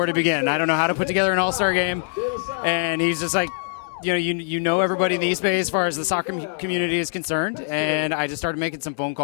to begin. I don't know how to put together an All-Star game. And he's just like, you know everybody in the East Bay as far as the soccer community is concerned, and I just started making some phone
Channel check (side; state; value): right; silent; 64 dB below the other